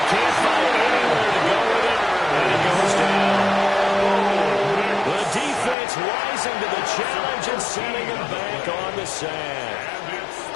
can't find anywhere to go with it. And it goes down. The defense rising to the challenge and sending him back on the sand.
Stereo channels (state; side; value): drops out; right; at 5.8 s